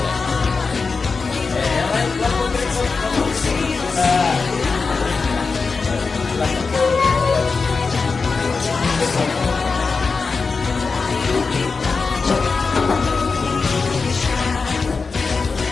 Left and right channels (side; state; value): right; quieter; 4.6 dB